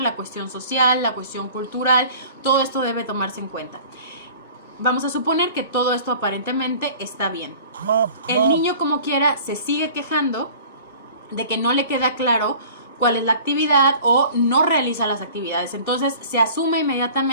la cuestión social, la cuestión cultural. Todo esto debe tomarse en cuenta. Vamos a suponer que todo esto aparentemente está bien. El niño, como quiera, se sigue quejando de que no le queda claro cuál es la actividad o no realiza las actividades. Entonces se asume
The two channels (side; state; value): both; inverted; correlation -0.46